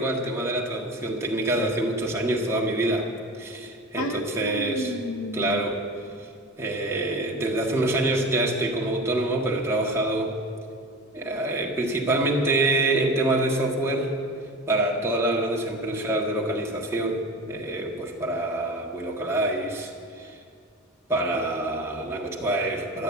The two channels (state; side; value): normal; both; correlation 0.32